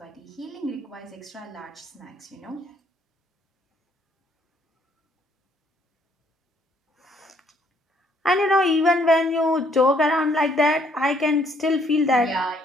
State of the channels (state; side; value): normal; both; correlation 0.67